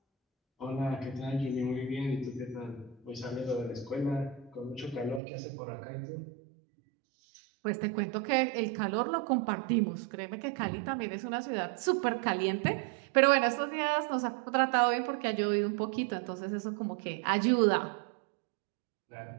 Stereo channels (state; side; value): drops out; left; at 5.2 s